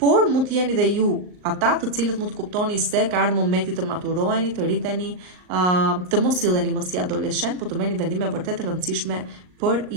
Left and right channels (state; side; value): late; left; 39 ms